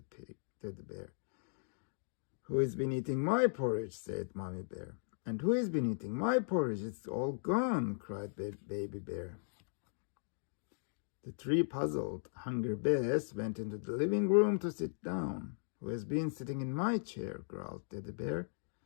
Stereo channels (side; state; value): right; silent; digital silence